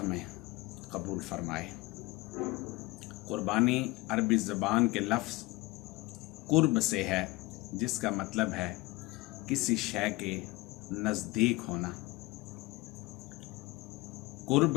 میں قبول فرمائے۔ قربانی عربی زبان کے لفظ قرب سے ہے، جس کا مطلب ہے کسی شے کے نزدیک ہونا۔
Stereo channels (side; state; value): right; quieter; 22.3 dB